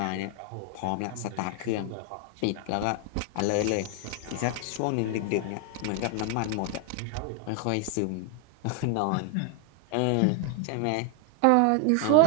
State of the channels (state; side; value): different; both; correlation 0.00